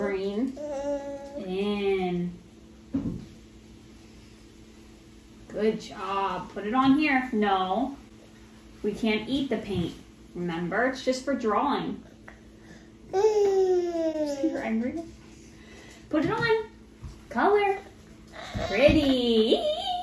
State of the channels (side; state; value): both; identical; correlation 1.00